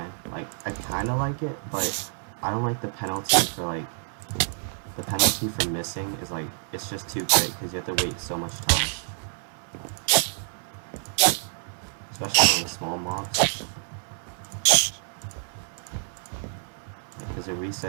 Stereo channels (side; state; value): left; silent; 60 dB below the other